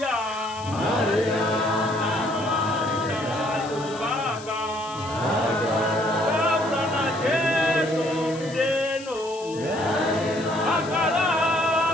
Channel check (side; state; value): left; noise; hiss, 17 dB below the sound